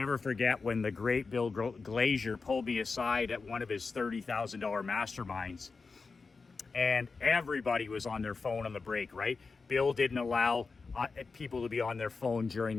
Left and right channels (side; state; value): right; quieter; 4.4 dB